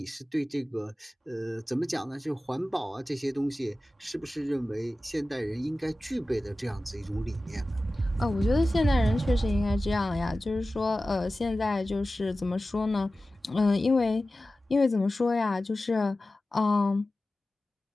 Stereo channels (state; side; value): normal; both; correlation 0.95